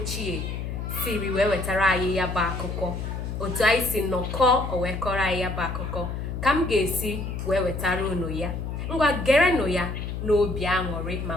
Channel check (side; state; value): left; noise; hum, 5 dB below the sound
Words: siri wee wetara anyị ya bụ akụkọ, otu anyị si nnọkọ o wee kọrọ anyị ya bụ akụkọ, ka m ga-esi wee wetara unu ya. Ngwa gerenụ ya n'obi aṅụrị ma